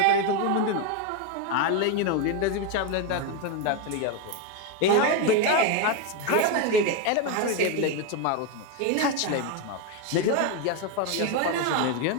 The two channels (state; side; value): different; both; correlation 0.02